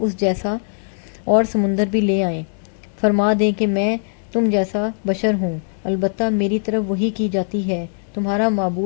جیسا اور سمندر بھی لے آئیں۔ فرما دیں کہ میں تم جیسا بشر ہوں، البتہ میری طرف وحی کی جاتی ہے، تمہارا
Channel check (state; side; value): silent; right; digital silence